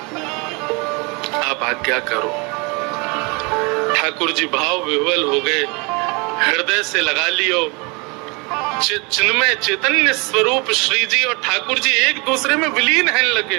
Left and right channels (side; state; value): left; quieter; 29.4 dB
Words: आप आज्ञा करो। ठाकुर जी भाव विह्वल हो गए, हृदय से लगा लियो। चिन्मय चैतन्य स्वरूप श्री जी और ठाकुर जी एक दूसरे में विलीन हैं लगे।